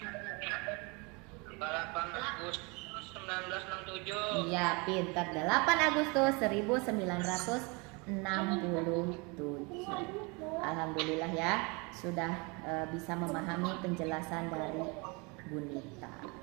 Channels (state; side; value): quieter; left; 29.3 dB